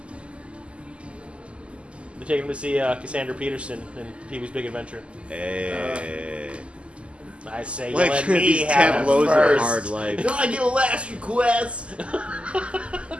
taking him to see Cassandra Peterson in Pee-wee's Big Adventure. Hey. I say, Like, you let me these have it tableaus are first. hard life. Can I get a last request?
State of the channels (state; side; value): late; left; 0.055 ms